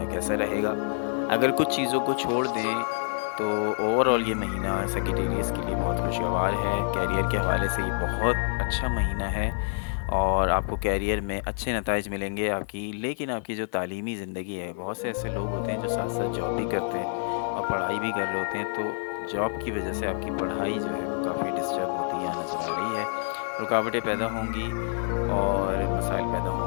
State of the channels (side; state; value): right; silent; 60 dB below the other